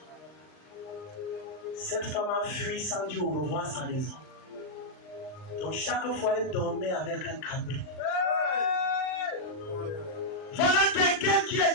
Cette femme a fui sans dire au revoir à sa maison. Donc chaque fois, elle dormait avec un cabri. Voilà quelqu'un qui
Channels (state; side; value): late; right; 39 ms